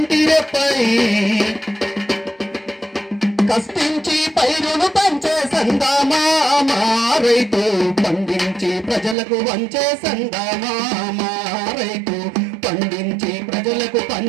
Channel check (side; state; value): left; drops out; at 9.2 s